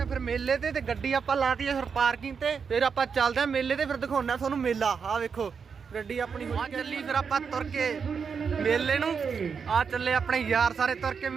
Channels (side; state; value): left; quieter; 6.1 dB